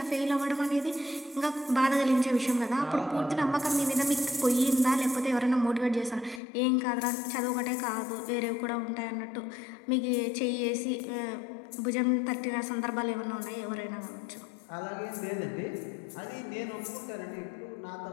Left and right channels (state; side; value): drops out; right; at 6.4 s